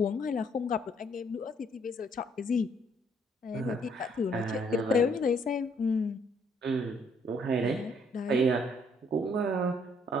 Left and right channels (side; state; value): both; normal; correlation 0.67